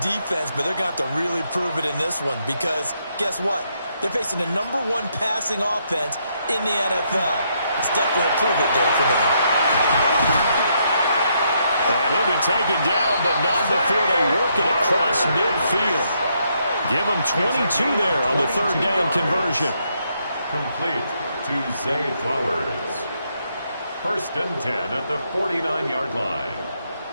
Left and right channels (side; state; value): both; inverted; correlation -0.75